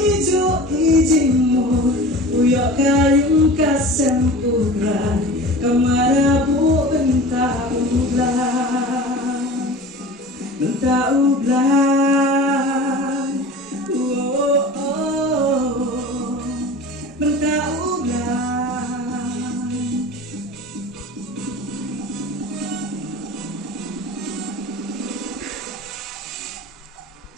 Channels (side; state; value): both; normal; correlation 0.37